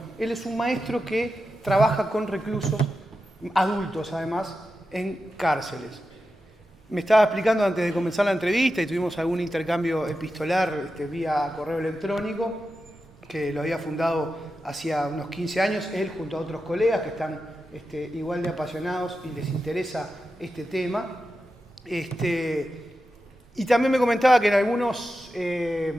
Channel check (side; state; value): both; normal; correlation 0.90